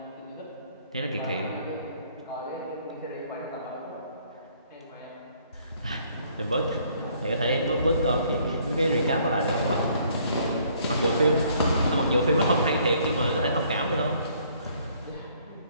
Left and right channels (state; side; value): inverted; both; correlation -0.63